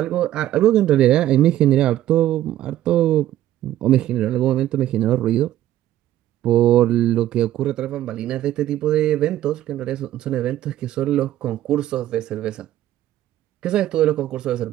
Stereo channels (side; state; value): left; quieter; 13.3 dB